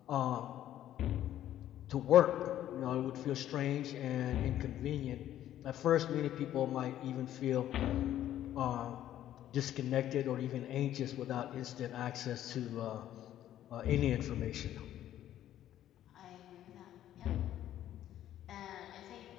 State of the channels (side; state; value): right; quieter; 12.1 dB